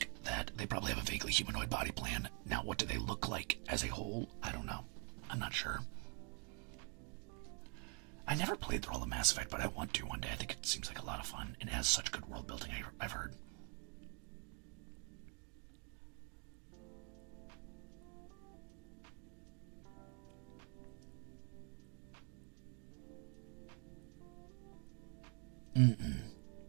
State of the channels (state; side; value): quieter; left; 35.6 dB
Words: that they probably have a vaguely humanoid body plan. Now, what do they look like as a whole? I don't know. I'm not sure. I never played through all the Mass Effect, but I want to one day. I think it seems like a lot of fun, and it has such good world building, I've heard.